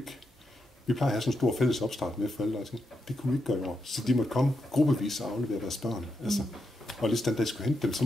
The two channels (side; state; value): both; normal; correlation 0.84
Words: at have sådan en stor fælles opstart med forældre, og det kunne vi ikke gøre i år. Så de måtte komme gruppevis og aflevere deres børn. Altså, og hvis den dag skulle hente dem, så